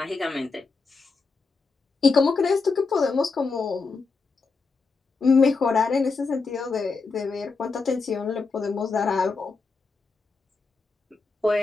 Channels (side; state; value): right; quieter; 4.3 dB